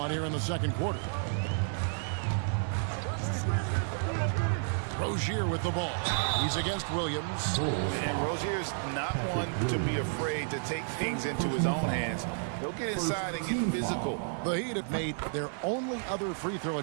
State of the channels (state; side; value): silent; left; digital silence